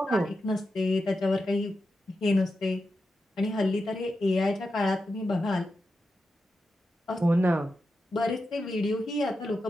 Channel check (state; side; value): normal; both; correlation 0.89